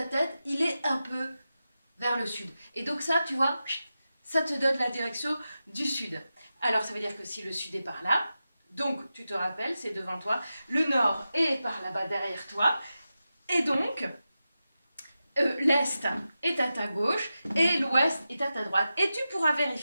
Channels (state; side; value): inverted; both; correlation -0.92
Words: tête, il est un peu vers le sud. Et donc ça, tu vois, ça te donne la direction du sud. Alors ça veut dire que si le sud est par là, donc tu te rappelles, c'est devant toi, le nord est par là-bas derrière toi, et donc l'est est à ta gauche et l'ouest est à ta droite. Et tu pourras